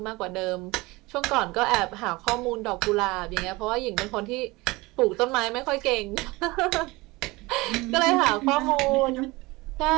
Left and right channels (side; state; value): left; quieter; 22.3 dB